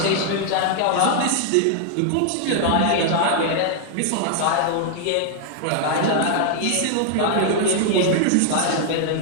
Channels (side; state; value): both; different; correlation 0.00